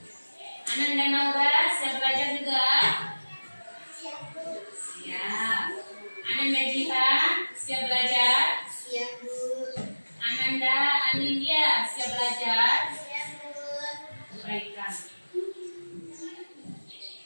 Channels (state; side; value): inverted; both; correlation -1.00